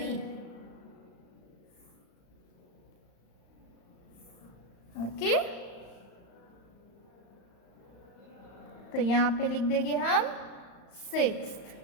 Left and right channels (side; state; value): right; late; 35 ms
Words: ओके। तो यहाँ पे लिख देंगे हम 6th,